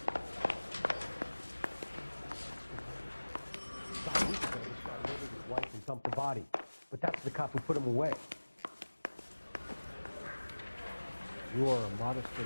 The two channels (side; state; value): both; inverted; correlation -1.00